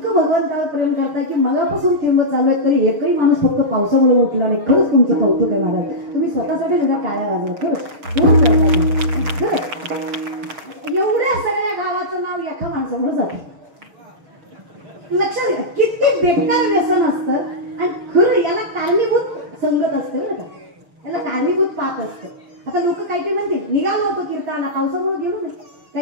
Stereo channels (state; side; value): late; left; 6.4 ms